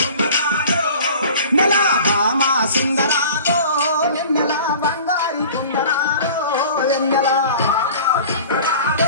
నెల భామ సుందరాలో వెన్నెల బంగారి కుందనాలో వెన్నెల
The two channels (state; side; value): inverted; both; correlation -0.43